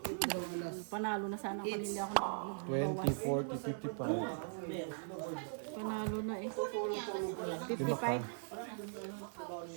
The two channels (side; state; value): left; silent; 51 dB below the other